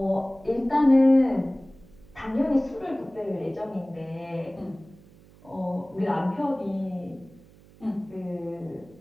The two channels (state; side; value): noise; right; hum, 25 dB below the sound